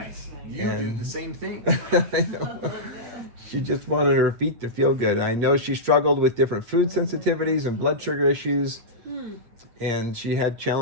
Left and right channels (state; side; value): late; left; 8.5 ms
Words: You do And- the same thing. I know. She just wanted her feet to feel good. I know she struggled with different food sensitivities and blood sugar issues, and she had